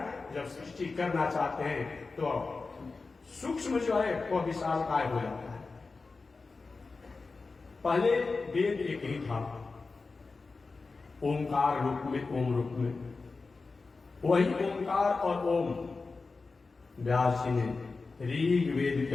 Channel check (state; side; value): quieter; right; 4.0 dB